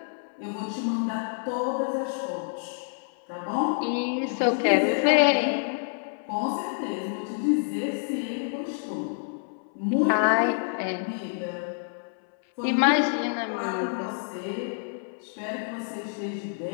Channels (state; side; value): silent; right; 60 dB below the other